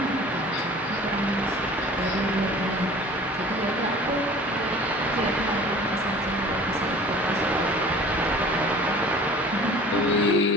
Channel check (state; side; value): normal; both; correlation 0.45